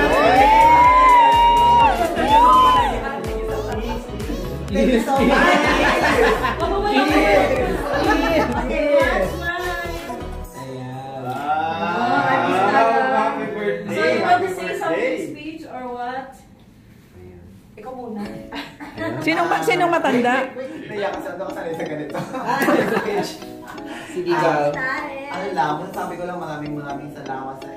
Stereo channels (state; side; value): identical; both; correlation 1.00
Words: you so much. Happy birthday. So you want to say something speech or what? Ikaw muna. Sinong matanda? Naiyak kasi ako sanay sa ganito. Sige, girl. Ano lang, sabi ko lang maraming salamat sa